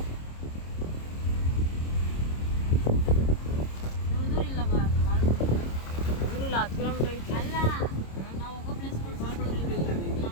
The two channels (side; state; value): right; late; 26 ms